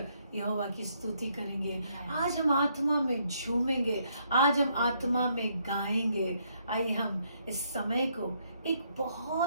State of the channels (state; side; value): inverted; both; correlation -0.72